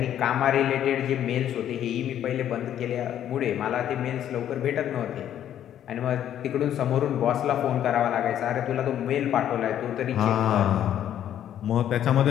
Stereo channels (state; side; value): quieter; right; 10.6 dB